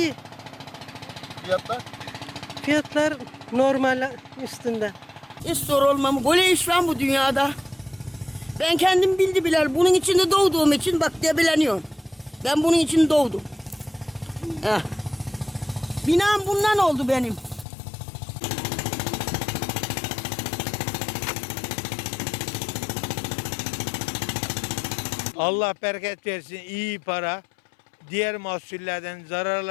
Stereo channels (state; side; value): drops out; right; at 17.7 s